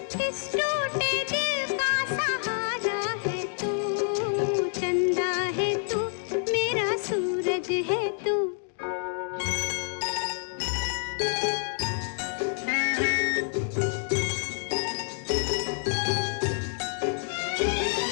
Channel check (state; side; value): silent; right; 59 dB below the other